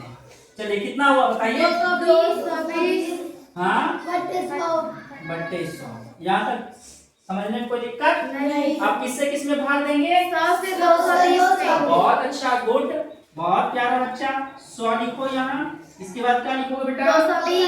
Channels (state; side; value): identical; both; correlation 1.00